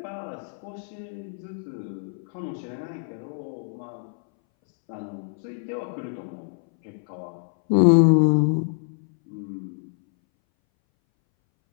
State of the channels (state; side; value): silent; right; 60 dB below the other